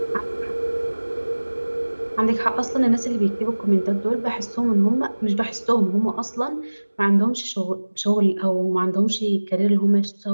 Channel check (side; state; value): both; inverted; correlation -1.00